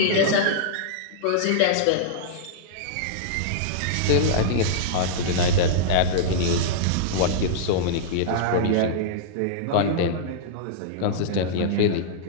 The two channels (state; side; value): different; both; correlation -0.03